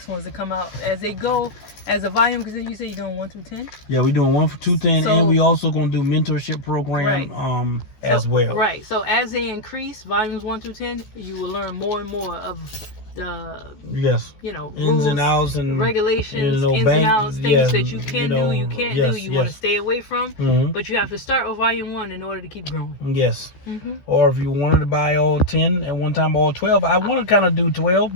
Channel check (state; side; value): late; right; 14 ms